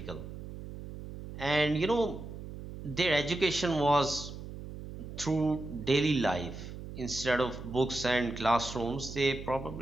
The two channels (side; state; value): right; noise; hum, 11 dB below the sound